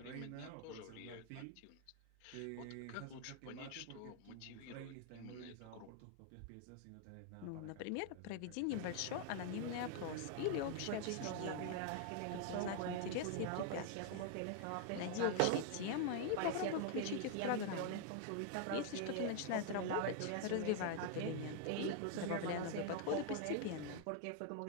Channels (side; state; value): both; different; correlation 0.00